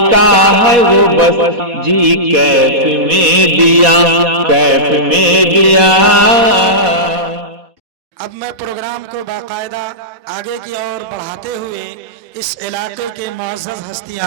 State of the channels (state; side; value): late; left; 4.1 ms